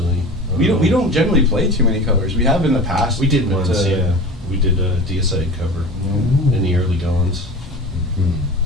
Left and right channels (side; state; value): both; normal; correlation 0.34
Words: We don't generally play too many covers. We have in the past. We did but, once, yeah. We did a Deicide cover in the early goings.